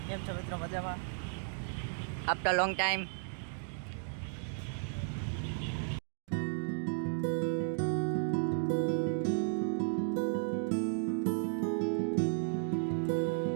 કેમ છો મિત્રો? મજામાં? After long time.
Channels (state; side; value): silent; left; digital silence